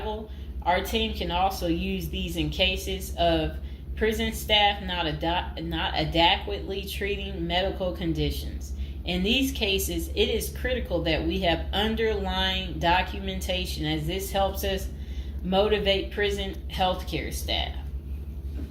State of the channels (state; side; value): identical; both; correlation 1.00